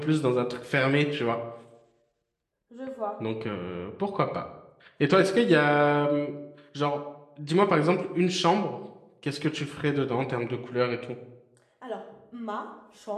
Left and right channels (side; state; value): both; identical; correlation 1.00